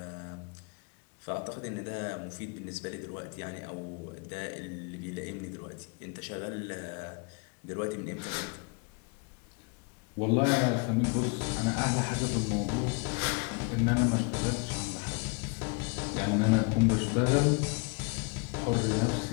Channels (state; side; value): quieter; right; 33.9 dB